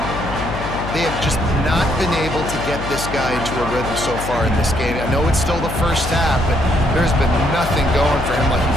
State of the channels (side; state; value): left; noise; hum, 7 dB below the sound